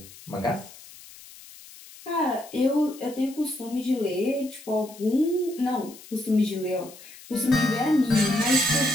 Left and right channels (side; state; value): left; noise; hiss, 19 dB below the sound